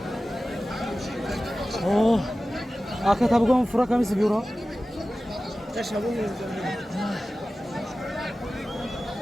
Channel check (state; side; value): normal; both; correlation 0.95